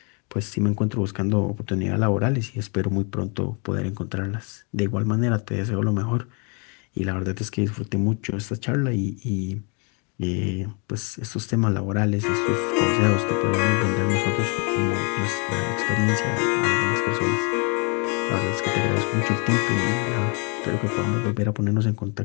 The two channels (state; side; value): quieter; right; 34.3 dB